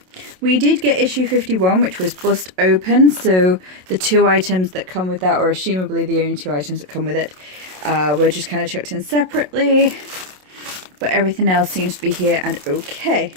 We did get issue 51, which was bust open. So the 2 items that come with that, or assumably the only 2 items that come with it, were just kind of chucked in separately. But everything else seems to be here and okay.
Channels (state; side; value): late; left; 27 ms